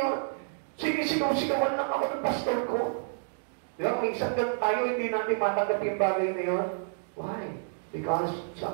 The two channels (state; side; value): silent; left; digital silence